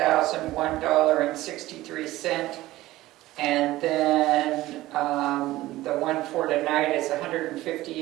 and then the one for tonight is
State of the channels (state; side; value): quieter; left; 16.9 dB